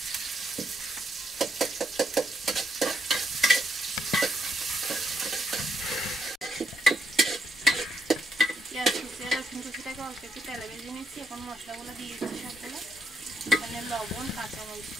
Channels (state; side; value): normal; both; correlation 0.76